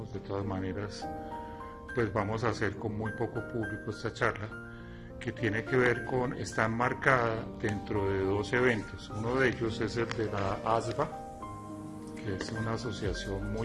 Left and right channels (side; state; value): both; identical; correlation 1.00